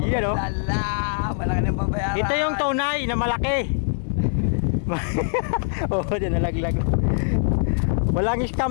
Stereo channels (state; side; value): silent; right; digital silence